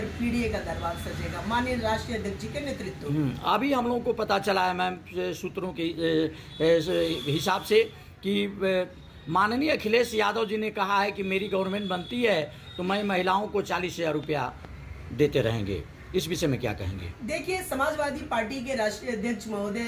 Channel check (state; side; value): identical; both; correlation 1.00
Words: पीडीए का दरबार सजेगा, माननीय राष्ट्रीय अध्यक्ष जी के नेतृत्व में। अभी हम लोगों को पता चला है मैम सूत्रों के हिसाब से कि माननीय अखिलेश यादव जी ने कहा है कि मेरी गवर्नमेंट बनती है तो मैं महिलाओं को 40,000 रुपया देते रहेंगे। इस विषय में क्या कहेंगे? देखिए, समाजवादी पार्टी के राष्ट्रीय अध्यक्ष